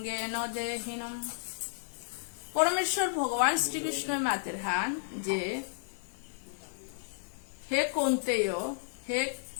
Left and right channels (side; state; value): right; silent; 56 dB below the other